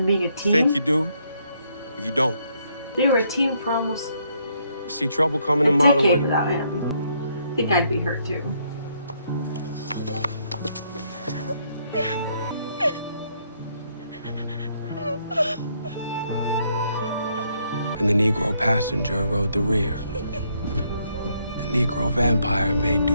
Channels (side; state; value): both; inverted; correlation -0.72